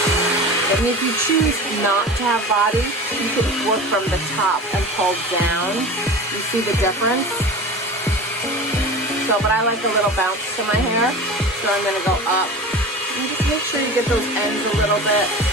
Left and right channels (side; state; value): both; normal; correlation 0.33